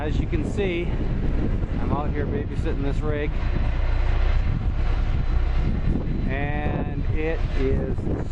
you can see, I'm out here babysitting this rig, and it is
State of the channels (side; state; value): both; identical; correlation 1.00